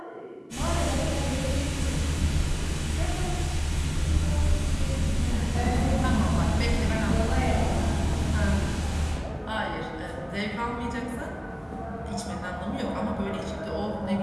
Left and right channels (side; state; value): both; identical; correlation 1.00